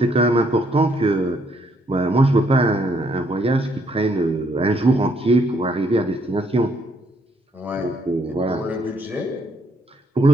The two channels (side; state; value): both; normal; correlation 0.70